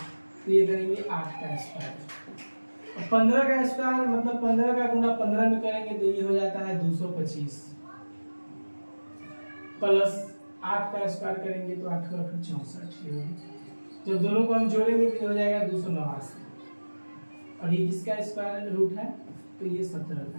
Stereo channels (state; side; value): inverted; both; correlation -1.00